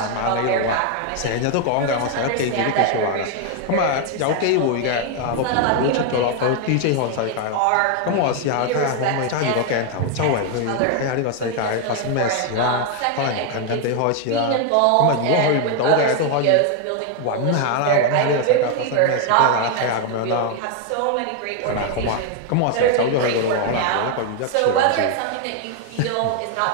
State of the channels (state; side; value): different; both; correlation 0.01